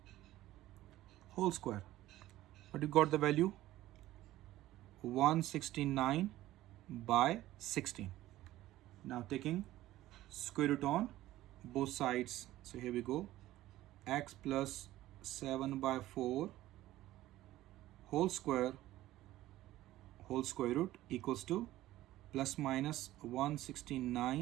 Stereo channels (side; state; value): left; quieter; 15.4 dB